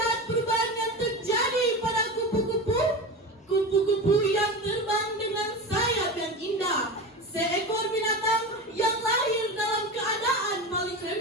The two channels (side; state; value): both; normal; correlation 0.26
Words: perubahan yang terjadi pada kupu-kupu? Kupu-kupu yang terbang dengan sayap yang indah, seekor binatang yang lahir dalam keadaan paling